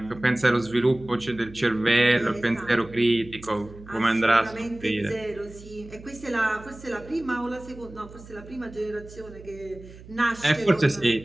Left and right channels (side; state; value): right; noise; hum, 18 dB below the sound